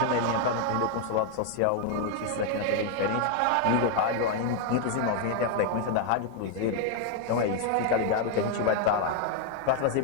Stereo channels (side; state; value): both; different; correlation 0.00